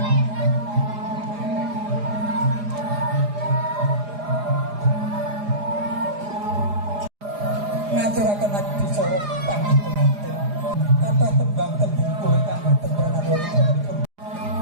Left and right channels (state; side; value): late; left; 4.9 ms